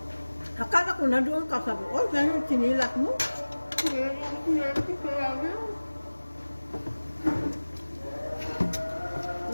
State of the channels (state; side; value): inverted; both; correlation -1.00